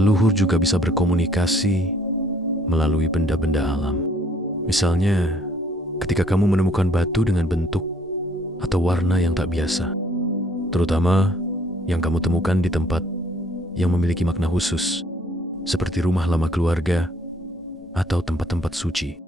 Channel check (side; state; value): both; normal; correlation 0.61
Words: juga bisa berkomunikasi melalui benda-benda alam. Misalnya, ketika kamu menemukan batu dengan bentuk atau warna yang tak biasa, terutama yang kamu temukan di tempat yang memiliki makna khusus, seperti rumah lama keluarga atau tempat-tempat suci.